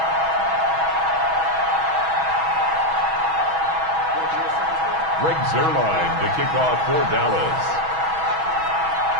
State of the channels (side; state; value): left; late; 6.2 ms